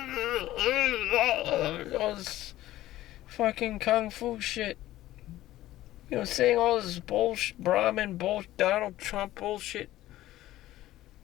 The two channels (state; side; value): quieter; right; 15.1 dB